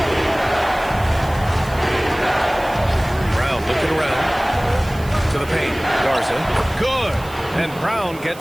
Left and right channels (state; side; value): noise; right; hiss, 20 dB below the sound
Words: Looking around to the paint. Garza. Good. And Brown